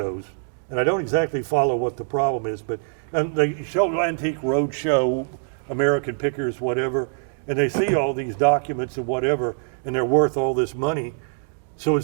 and I don't exactly follow what the problem is, but they show Antique Roadshow, American Pickers, whatever, and they see all these documents and whatever, and they're worth all this money. So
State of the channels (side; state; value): left; silent; digital silence